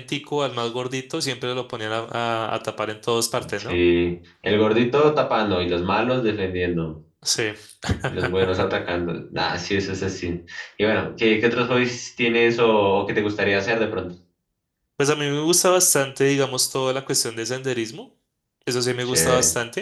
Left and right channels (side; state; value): both; identical; correlation 1.00